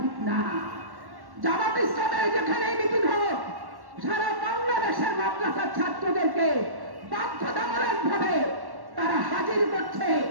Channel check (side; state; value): left; late; 1.1 ms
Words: না। জামাত ইসলামের যেখানে মিটিং হোক, সারা বাংলাদেশের মাদ্রাসার ছাত্রদেরকে বাধ্যতামূলক ভাবে তারা হাজির করছে,